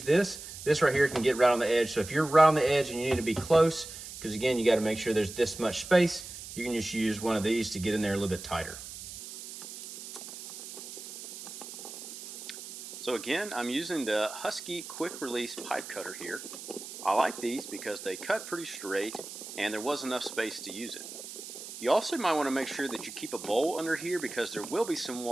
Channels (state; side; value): noise; right; hiss, 12 dB below the sound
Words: this. This right here can get right on the edge. So if you're right on the edge and you need to be close, because again, you got to make sure there's this much space, you can just use one of these to get in there a little bit tighter. So again, I'm using the Husky quick release pipe cutter here. I like these because they cut pretty straight and there was enough space to use it. You also might want to make sure that you keep a bowl under here because there will be some